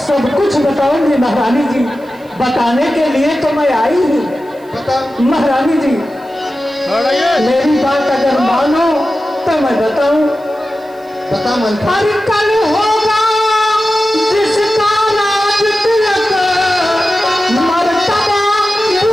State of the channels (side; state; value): right; noise; hiss, 30 dB below the sound